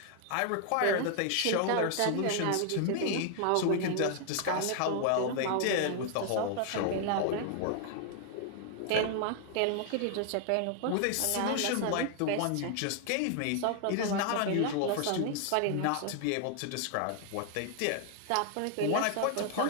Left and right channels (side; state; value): both; different; correlation 0.00